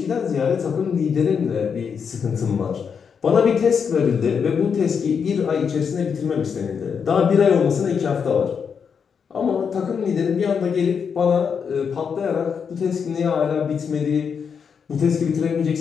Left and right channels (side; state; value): right; quieter; 6.6 dB